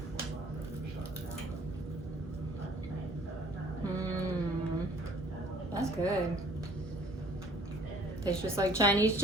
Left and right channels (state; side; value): normal; both; correlation 0.56